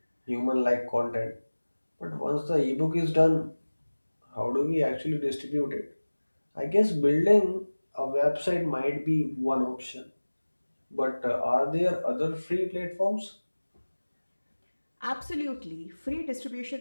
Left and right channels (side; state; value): both; inverted; correlation -1.00